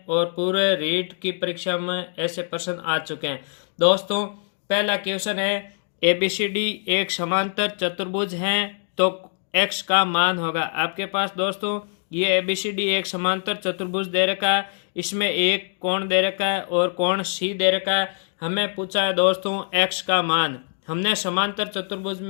और पूरे रीट की परीक्षा में ऐसे प्रश्न आ चुके हैं। दोस्तों, पहला क्वेश्चन है, एबीसीडी एक समांतर चतुर्भुज हैं तो एक्स का मान होगा। आपके पास दोस्तों ये एबीसीडी एक समांतर चतुर्भुज दे रखा है, इसमें एक कोण दे रखा है और कोण सी दे रखा है। हमें पूछा है दोस्तों एक्स का मान। हमने समांतर चतुर्भुज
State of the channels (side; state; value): right; silent; 63 dB below the other